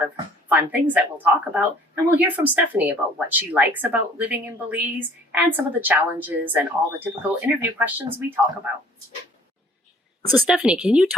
of fun things that we'll talk about, and we'll hear from Stephanie about what she likes about living in Belize and some of the challenges and all the typical interview questions we talk about. So Stephanie, can you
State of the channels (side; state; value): both; normal; correlation 0.54